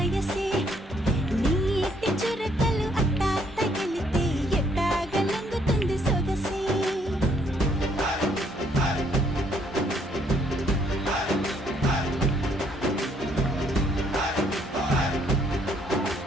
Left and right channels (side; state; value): both; normal; correlation 0.67